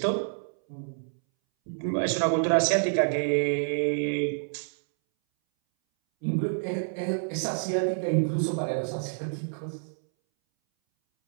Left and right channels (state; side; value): silent; left; 59 dB below the other